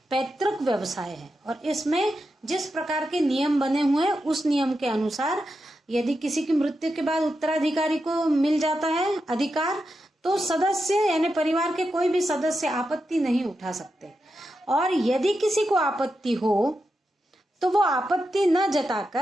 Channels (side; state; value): both; normal; correlation 0.87